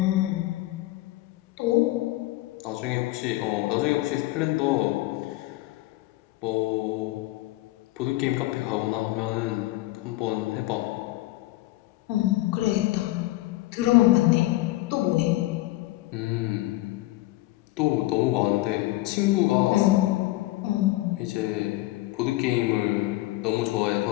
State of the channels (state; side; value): quieter; right; 18.3 dB